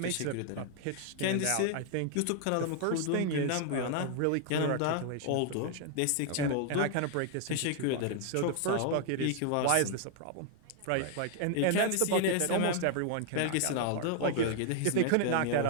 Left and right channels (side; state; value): both; different; correlation 0.00